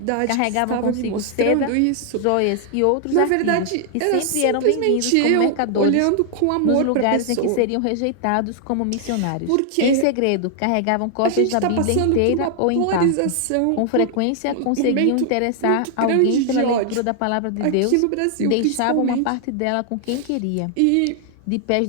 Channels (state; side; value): different; both; correlation 0.00